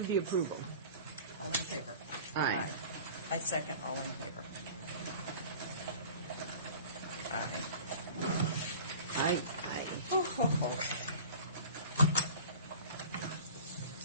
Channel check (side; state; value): both; inverted; correlation -0.42